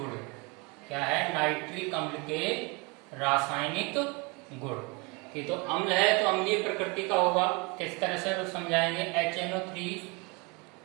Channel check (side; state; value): left; quieter; 28.9 dB